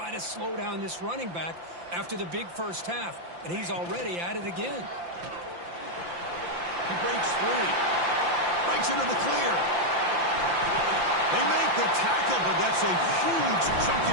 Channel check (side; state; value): left; late; 5.8 ms